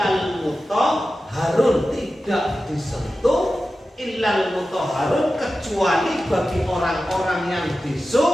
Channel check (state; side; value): normal; both; correlation 0.93